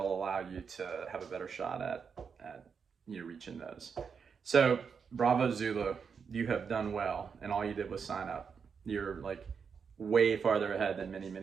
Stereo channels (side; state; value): left; quieter; 6.2 dB